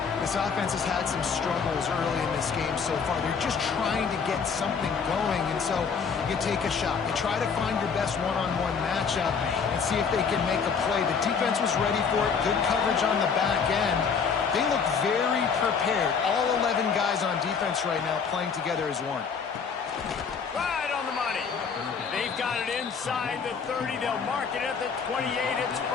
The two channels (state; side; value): quieter; right; 6.0 dB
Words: This offense has had some struggles early in this game so far. They're just trying to get something going, and so you take a shot. You try to find your best one-on-one matchup and see if they can make a play. The defense was ready for it. Good coverage on the back end. They look very prepared. All 11 guys on defense right now playing together as one. Right on the money. They've got it inside the 30. They'll mark it at the 28. It's